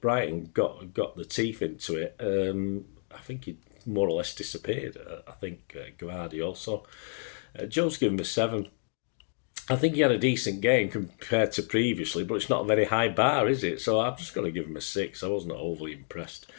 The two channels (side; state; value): right; silent; 58 dB below the other